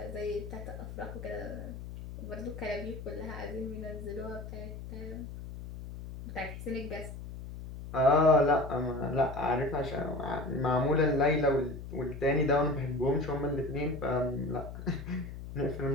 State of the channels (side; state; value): left; noise; hum, 10 dB below the sound